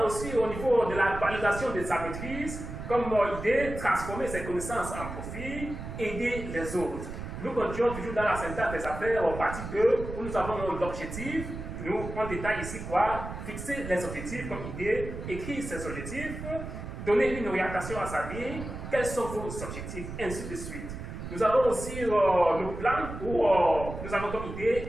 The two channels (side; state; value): right; noise; rumble, 8 dB below the sound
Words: aussi au niveau de la validation de sa maîtrise, comme idée, transformer ses connaissances en profit, aider les autres. Nous continuons toujours dans la syntaxe des affaires, en partie 2, où nous avons l'objectif. Nous, on détaille ici quoi? Fixer les objectifs comme idée, écrire ses objectifs, donner une orientation à sa vie, quels sont vos objectifs, ainsi de suite. Nous avons aussi le plan où nous avons comme idée